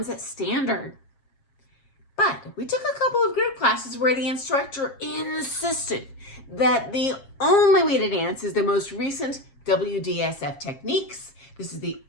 standard. But we took a couple of group classes where the instructor insisted that the only way to dance is the most recent WDSF techniques. This is the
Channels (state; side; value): late; right; 7.4 ms